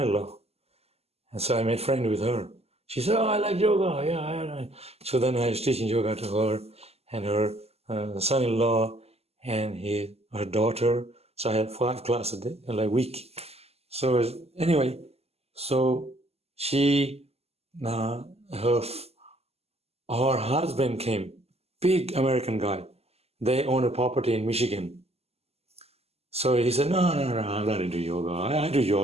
And so I made friends with her. She said, oh, I like yoga. Yeah. So then I was teaching yoga to her and her son-in-law and her daughter. So I had 5 classes a week. So anyway, so she, her husband came, big American guy. They own a property in Michigan. So he said, no, I'm not into yoga. I do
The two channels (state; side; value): late; left; 0.29 ms